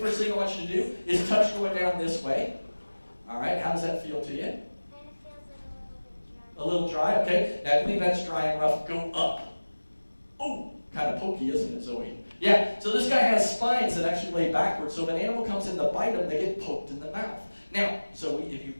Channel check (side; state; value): both; inverted; correlation -1.00